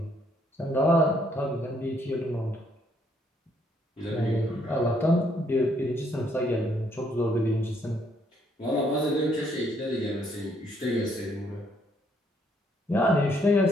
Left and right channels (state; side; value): normal; both; correlation 0.70